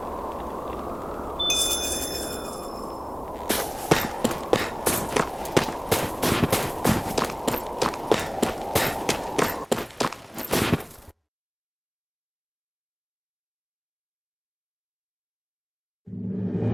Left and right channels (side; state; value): both; identical; correlation 1.00